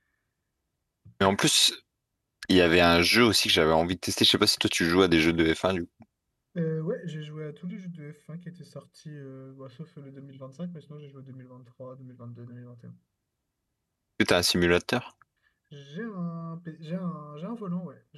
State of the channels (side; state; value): both; identical; correlation 1.00